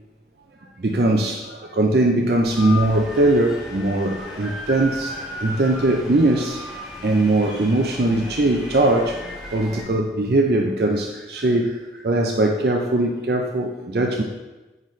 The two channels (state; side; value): normal; both; correlation 0.52